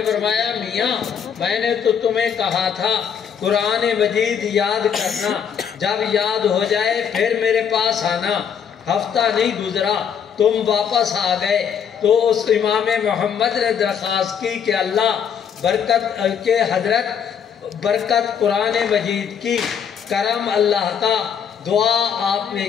فرمایا میاں میں نے تو تمہیں کہا تھا قرآن مجید یاد کرنا، جب یاد ہو جائے پھر میرے پاس آنا، ہفتہ نہیں گزرا تم واپس آ گئے۔ تو اس امام محمد نے درخواست کی کہ اللہ برکت کے حضرت برکت قرآن مجید کی، کرم اللہ کا، دعا آپ نے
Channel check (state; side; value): quieter; right; 7.6 dB